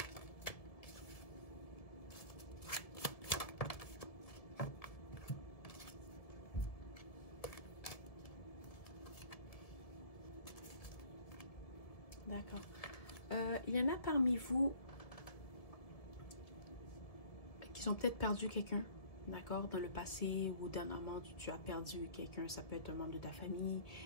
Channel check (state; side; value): late; right; 1.7 ms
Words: D'accord. Il y en a parmi vous qui ont peut-être perdu quelqu'un, d'accord, dans le passé ou dernièrement, tu as perdu quelqu'un. Ça peut être un membre de ta famille,